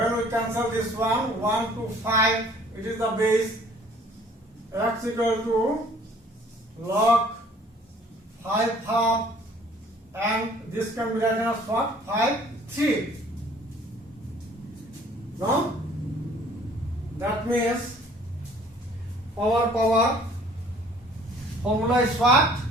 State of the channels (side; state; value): both; normal; correlation 0.55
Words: we cancel this one, 1 to 5, it is the base. X equal to log 5 half and this can be written as what? 5, 3. No? That means power formula is what?